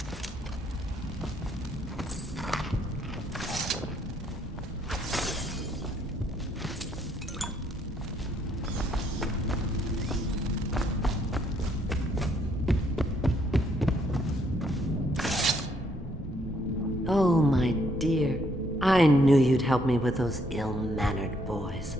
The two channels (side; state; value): both; normal; correlation 0.70